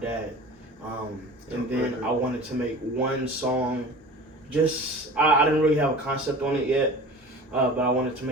And then I wanted to make one song, I didn't really have a concept on it yet, but I wanted to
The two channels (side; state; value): both; normal; correlation 0.39